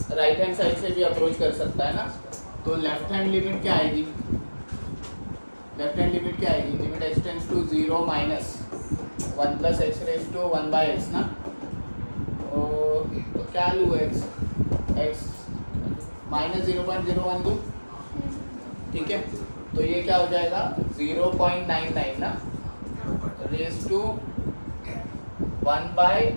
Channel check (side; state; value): both; inverted; correlation -1.00